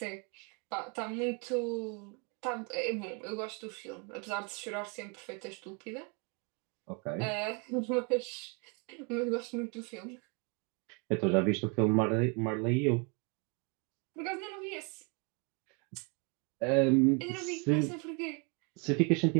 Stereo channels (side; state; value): left; quieter; 34.1 dB